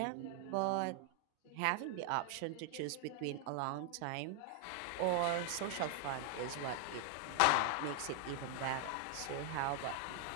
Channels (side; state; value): both; different; correlation 0.00